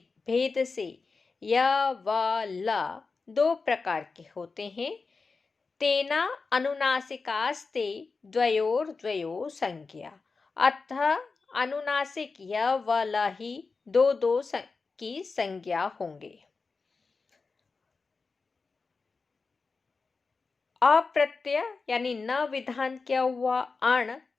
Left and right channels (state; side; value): quieter; right; 4.4 dB